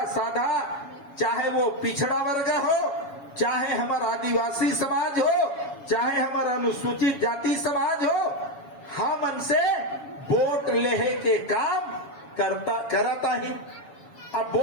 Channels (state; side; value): late; right; 7.2 ms